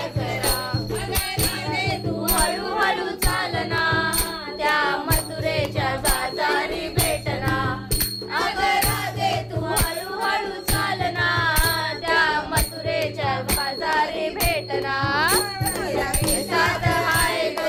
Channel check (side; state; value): both; identical; correlation 1.00